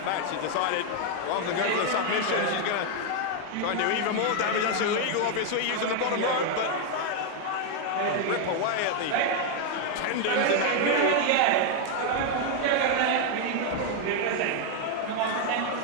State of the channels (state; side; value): different; both; correlation 0.01